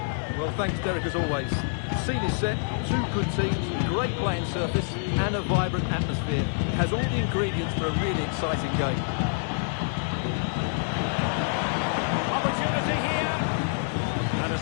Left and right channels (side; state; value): right; silent; digital silence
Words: Well, thanks, Derek, as always. The scene is set, two good teams, great playing surface and a vibrant atmosphere. It has all the ingredients for a really exciting game. Opportunity here. And a